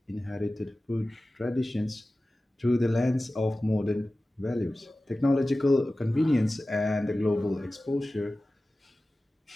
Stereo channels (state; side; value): normal; both; correlation 0.96